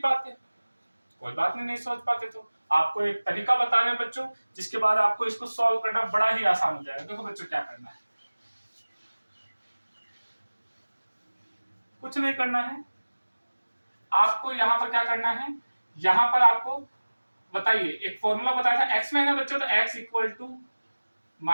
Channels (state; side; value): inverted; both; correlation -1.00